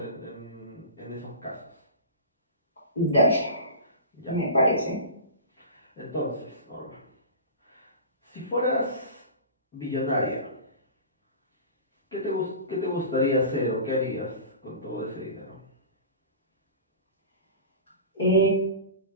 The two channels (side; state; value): both; inverted; correlation -0.33